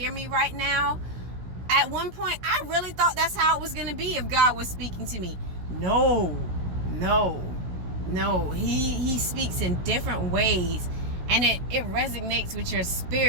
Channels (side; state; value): left; late; 16 ms